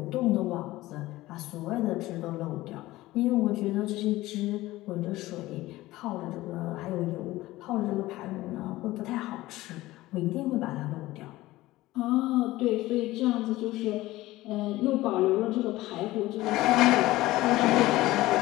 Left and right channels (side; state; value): right; quieter; 17.6 dB